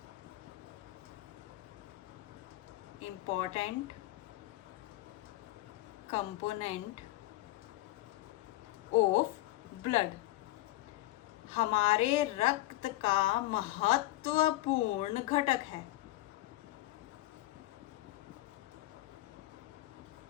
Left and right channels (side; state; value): right; quieter; 17.3 dB